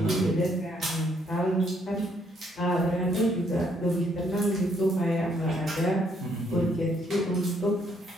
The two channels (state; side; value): normal; both; correlation 0.70